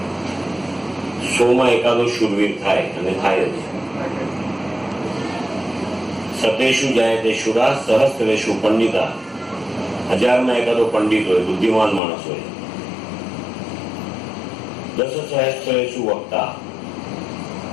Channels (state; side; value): drops out; right; at 12.0 s